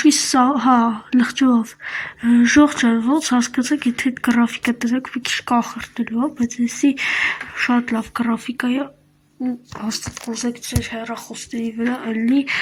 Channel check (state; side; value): identical; both; correlation 1.00